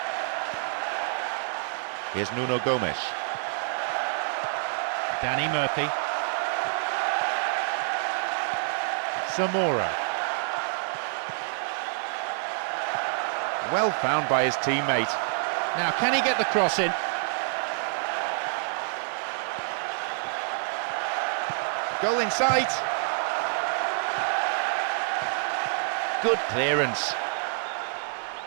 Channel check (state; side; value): silent; left; 60 dB below the other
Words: Here's Nuno Gomes. Danny Murphy. Zamora. Well found by his teammate. Now, can he get the cross in? Goal in sight. Good clearance.